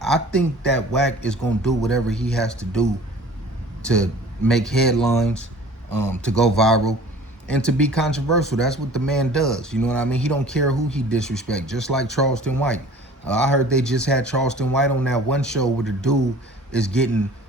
I think that Whack is gonna do whatever he has to do to make headlines, to go viral, and to be controversial. That's what the man does. You know what I mean? He don't care who he disrespect, just like Charleston White. I heard they just had Charleston White on that one show where the dude is getting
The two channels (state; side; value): normal; both; correlation 0.46